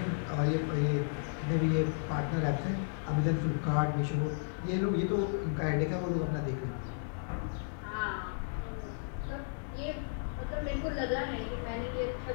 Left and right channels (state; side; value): silent; right; 55 dB below the other